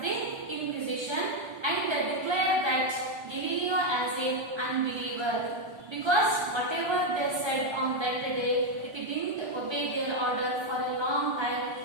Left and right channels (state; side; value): late; left; 1.3 ms